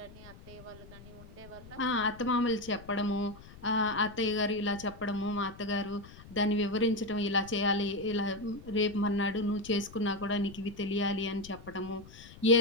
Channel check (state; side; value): noise; left; rumble, 18 dB below the sound